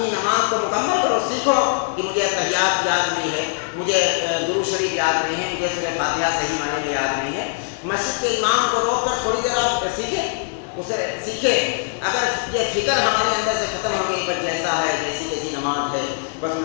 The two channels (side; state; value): right; silent; 60 dB below the other